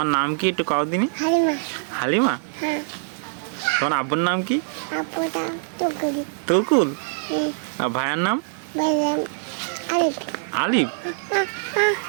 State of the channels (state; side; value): silent; left; digital silence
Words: নাম কি একটু কাও দিনি? হালিমা? তোমার আব্বুর নাম কি? তুকুল? আর ভাইয়ের নাম? আলিফ?